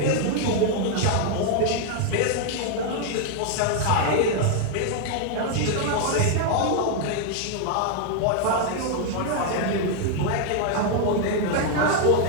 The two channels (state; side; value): different; both; correlation 0.00